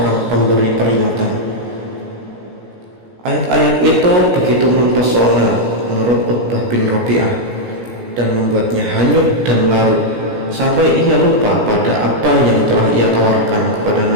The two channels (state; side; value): late; left; 17 ms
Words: pemberi peringatan. Ayat-ayat itu begitu mempesona menurut Utbah bin Rabi'ah dan membuatnya hanyut dan larut sampai ia lupa pada apa yang telah ia tawarkan kepada